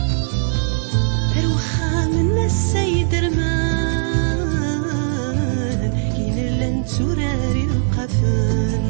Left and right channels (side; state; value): left; silent; digital silence